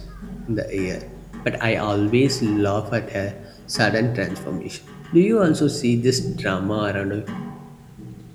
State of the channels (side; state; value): both; identical; correlation 1.00